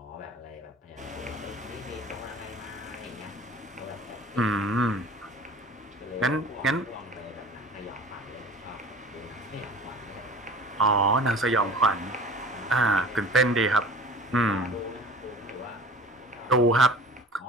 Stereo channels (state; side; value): normal; both; correlation 0.41